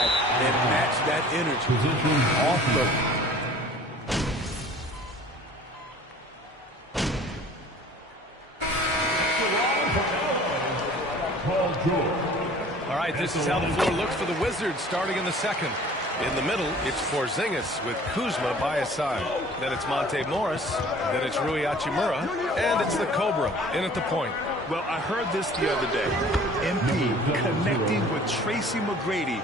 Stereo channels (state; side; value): normal; both; correlation 0.49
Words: and match that energy. Off the All right, this is how the floor looks for the Wizards starting in the second. In the middle, it's Porzingis with Kuzma by his side. Then it's Monte Morris. Then it's Rui Hachimura. And it's the Cobra in at the point. Well, I heard this the other day. MP connecting with Tracy McGrady.